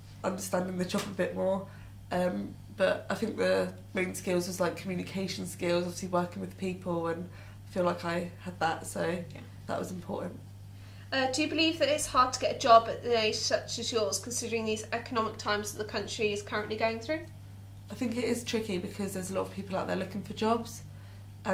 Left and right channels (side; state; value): both; identical; correlation 1.00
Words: understanding the job a bit more. But I think the main skills was like communication skills, obviously working with people, and I feel like I had that, so that was important. Do you believe that it's hard to get a job at an age such as yours, considering these economic times that the country is currently going through? I think it is tricky because there's a lot of people out there looking for jobs,